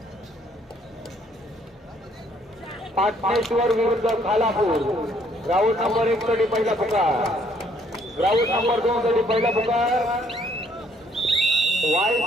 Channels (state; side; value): normal; both; correlation 0.65